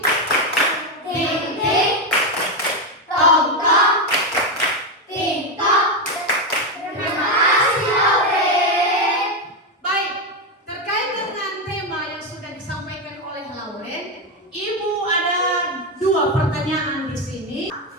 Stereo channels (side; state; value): both; normal; correlation 0.08